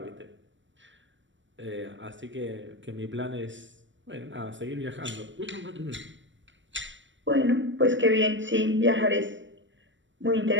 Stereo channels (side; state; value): left; late; 0.55 ms